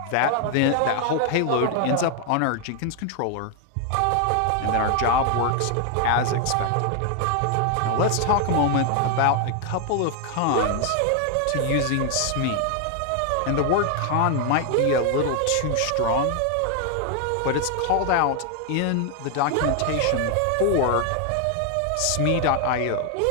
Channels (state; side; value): different; both; correlation 0.00